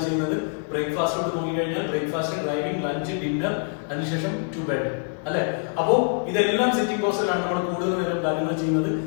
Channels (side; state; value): right; silent; 62 dB below the other